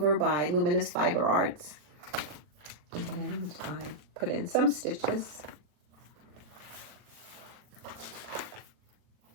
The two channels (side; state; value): left; late; 40 ms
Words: by Luminous Fiber Arts, and I put in some stitches.